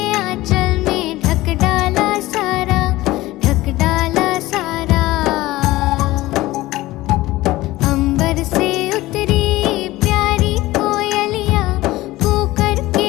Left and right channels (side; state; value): right; quieter; 18.0 dB